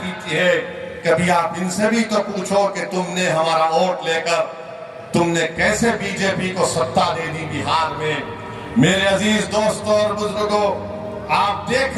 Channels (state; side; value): identical; both; correlation 1.00